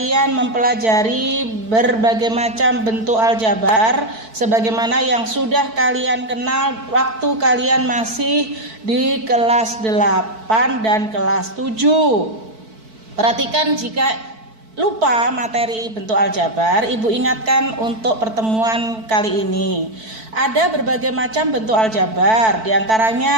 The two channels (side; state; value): left; late; 4.5 ms